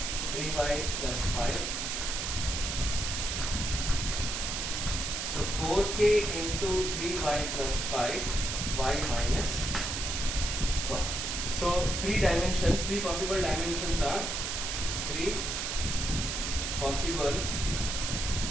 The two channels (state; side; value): noise; right; hiss, 2 dB below the sound